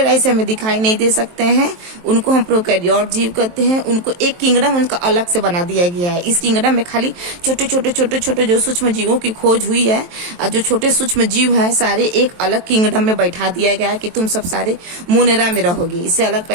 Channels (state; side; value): late; left; 23 ms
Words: आई से हमें दिखाई नहीं दे सकते हैं, उनको हम प्रोकैरियोट जीव कहते हैं। उनको एक किंगडम उनका अलग से बना दिया गया है। इस किंगडम में खाली छोटे छोटे जो सूक्ष्म जीवों की खोज हुई है, और जो छोटे सूक्ष्म जीव हैं सारे एक अलग किंगडम में बैठा दिया गया है कि तुम सब सारे मोनेरा में रहोगे। इससे अलग